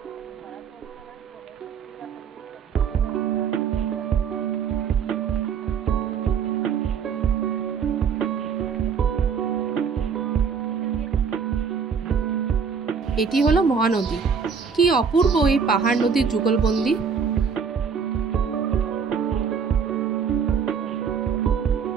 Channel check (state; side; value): quieter; left; 6.3 dB